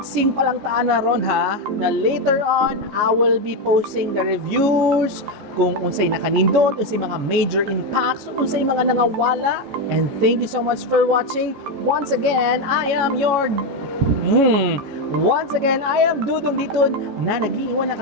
pa lang taan na ron ha, na later on, I will be posting the reviews, kung unsay nakanindot, unsay mga major impacts, unsay mga nangawala. And thank you so much for watching. Once again, I am Dudong Diton na nag-iiwan ng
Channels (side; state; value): left; late; 14 ms